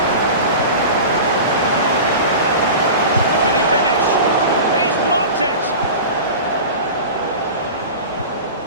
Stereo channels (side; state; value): both; inverted; correlation -0.32